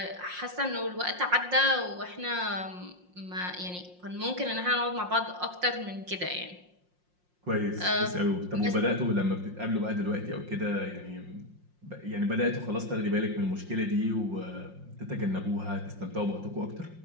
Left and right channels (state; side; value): late; left; 5.6 ms